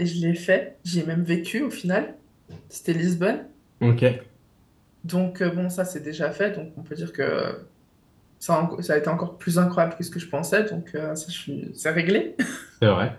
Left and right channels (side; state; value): both; identical; correlation 1.00